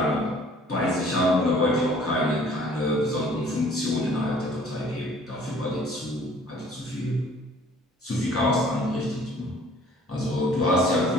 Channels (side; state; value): both; normal; correlation 0.55